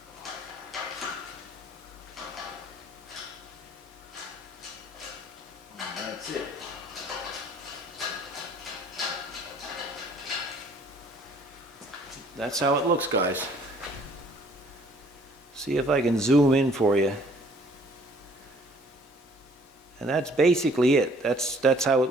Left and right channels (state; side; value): normal; both; correlation 0.58